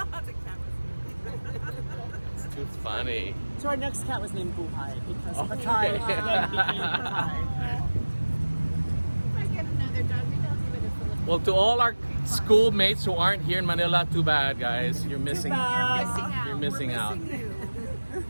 It's too funny. So our next cat was named Buhai, because Oh, Patai okay. then became Patai. If I get another dog, we don't give it a Philippine. Well, to all our schoolmates who aren't here in Manila, too bad, guys. You're missing. bad. You're missing We're out. missing you.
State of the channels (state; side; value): inverted; both; correlation -1.00